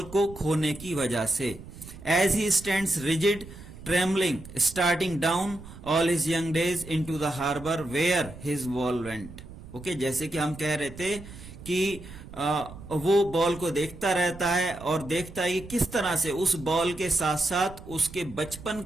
को खोने की वजह से। As he stands rigid trembling starting down all his young days into the harbour where his ball went. Okay, जैसे कि हम कह रहे थे कि वो बॉल को देखता रहता है और देखता है कि किस तरह से उस बॉल के साथ साथ उसके बचपन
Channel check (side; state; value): right; noise; rumble, 15 dB below the sound